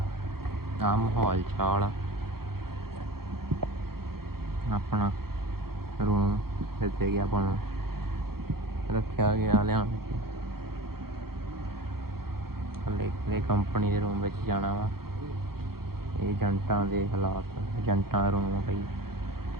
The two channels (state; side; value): late; left; 0.94 ms